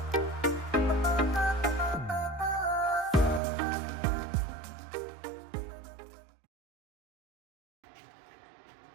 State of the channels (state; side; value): drops out; left; at 3.4 s